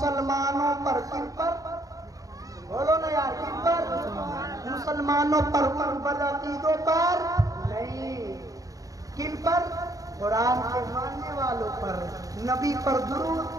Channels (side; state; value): left; late; 0.17 ms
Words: پر۔ کن پر؟ بولو نا یار، کن پر؟ مسلمانوں پر، ان بدعقیدوں پر نہیں۔ کن پر؟ قرآن کے ماننے والوں پر، نبی پر درود